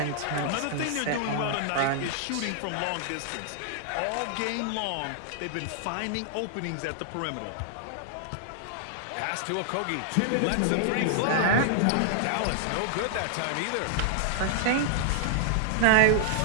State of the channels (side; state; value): both; different; correlation 0.00